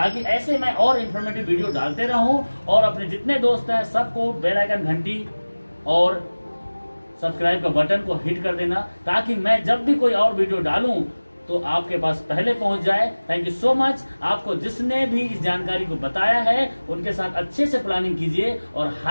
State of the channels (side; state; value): both; inverted; correlation -1.00